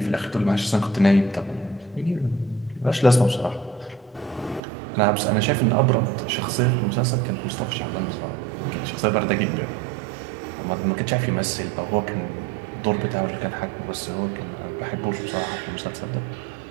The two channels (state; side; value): drops out; left; at 4.6 s